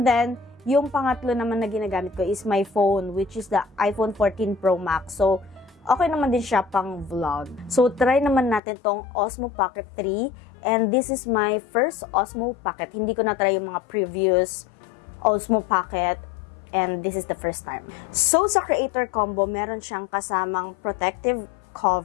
then, yung pangatlo naman na ginagamit ko is my phone, which is the iPhone 14 Pro Max. So, okay naman din siya pang vlog. So, try naman natin tong Osmo Pocket 3. And this is my first Osmo Pocket. Hindi ko na-try yung mga previous Osmo Pocket. And this is the first time. So, sa Creator Combo, meron siyang kasamang protective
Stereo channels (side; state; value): right; drops out; at 8.6 s